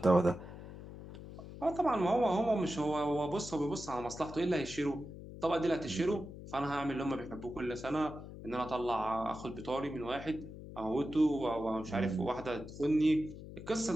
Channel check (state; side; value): noise; left; hum, 13 dB below the sound